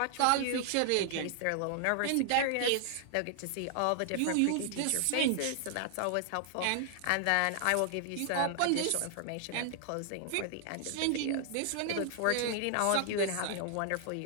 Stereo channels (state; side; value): different; both; correlation 0.00